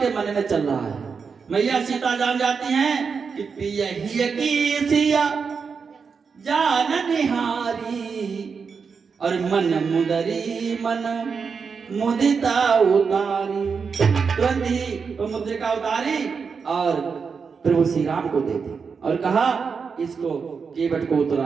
मन में चल रहा है। मैया सीता जान जाती हैं कि पिया ही की सिया जान निहारी, और मन मुदरी मन मुदिता उतारी। तुरंत ही वो मुद्रिका उतारी और प्रभु श्री राम को दे दी और कहा इसको केवट को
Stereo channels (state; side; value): quieter; left; 5.6 dB